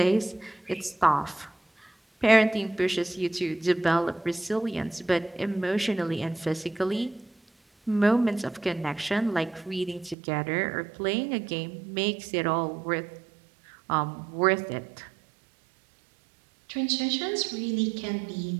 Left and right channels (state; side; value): drops out; left; at 10.2 s